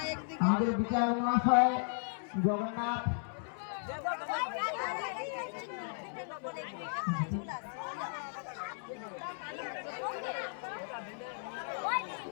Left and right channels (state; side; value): silent; right; digital silence